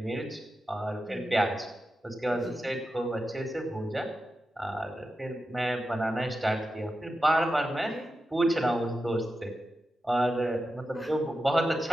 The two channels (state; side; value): normal; both; correlation 0.91